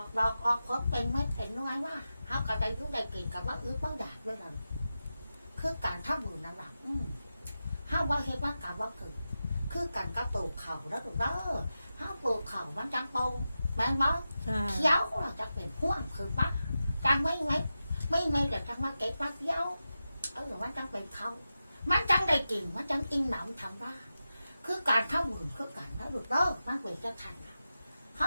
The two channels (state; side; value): inverted; both; correlation -0.92